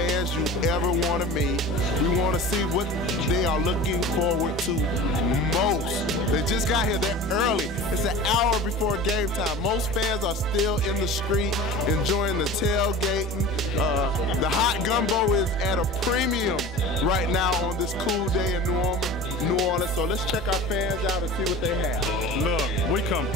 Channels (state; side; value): normal; both; correlation 0.37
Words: you ever want to meet. We want to see what they are looking forward to most. They just got here. They're early. It's an hour before game time. Most fans are still in the street enjoying the tailgating. The hot gumbo is at a premium right now on this cool day in New Orleans. So let's check our fans out and see what they have. Look, we come